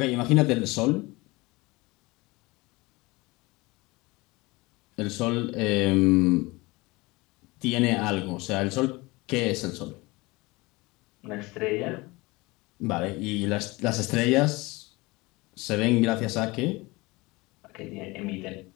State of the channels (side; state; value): right; quieter; 23.1 dB